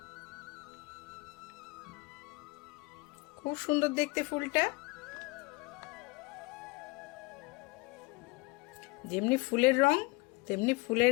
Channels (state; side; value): quieter; right; 24.5 dB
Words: খুব সুন্দর দেখতে ফুলটা, যেমনি ফুলের রং তেমনি